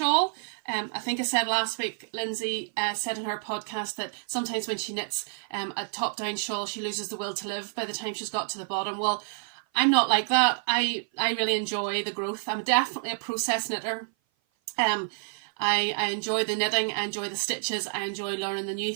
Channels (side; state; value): left; silent; 56 dB below the other